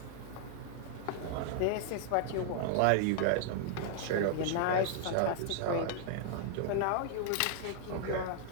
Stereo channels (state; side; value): different; both; correlation 0.00